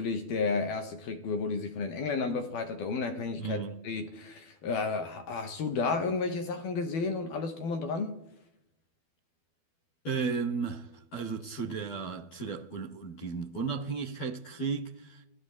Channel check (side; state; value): right; late; 12 ms